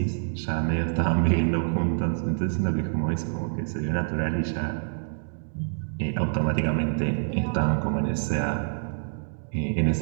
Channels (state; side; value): silent; left; digital silence